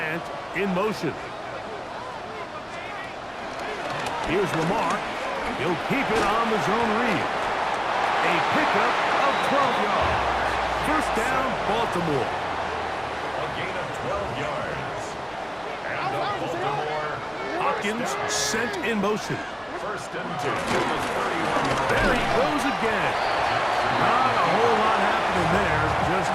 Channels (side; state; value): both; identical; correlation 1.00